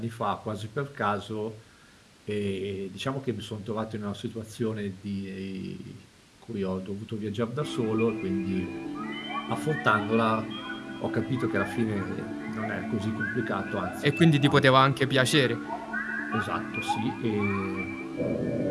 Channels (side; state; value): both; identical; correlation 1.00